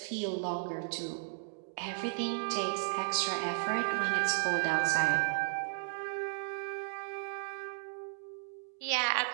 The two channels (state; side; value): silent; left; digital silence